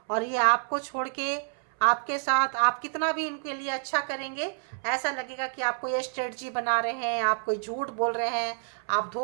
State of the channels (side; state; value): left; silent; 59 dB below the other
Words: और ये आपको छोड़ के, आपके साथ आप कितना भी इनके लिए अच्छा करेंगे, ऐसा लगेगा कि आप कोई स्ट्रेटजी बना रहे हैं, आप कोई झूठ बोल रहे हैं, आप